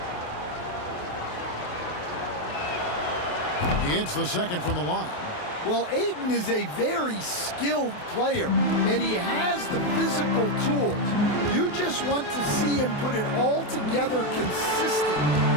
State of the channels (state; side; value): late; right; 28 ms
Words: He hits the second from the line. Well, Ayton is a very skilled player, and he has the physical tools. You just want to see him put it all together consistently.